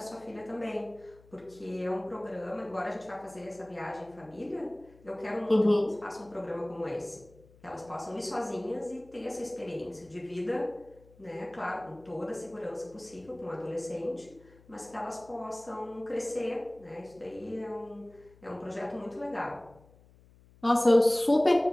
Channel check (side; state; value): left; noise; hum, 26 dB below the sound